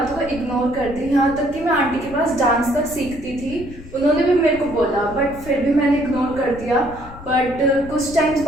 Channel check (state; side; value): noise; left; rumble, 16 dB below the sound